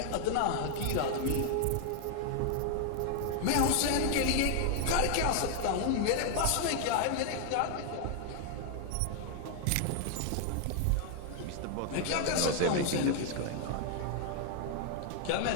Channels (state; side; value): different; both; correlation 0.00